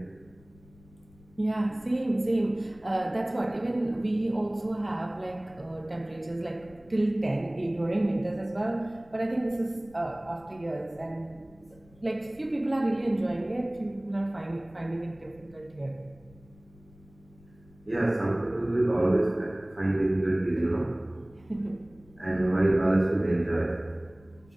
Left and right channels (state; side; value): noise; left; rumble, 26 dB below the sound